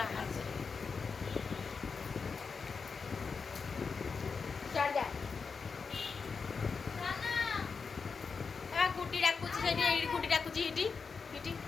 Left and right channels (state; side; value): quieter; right; 5.2 dB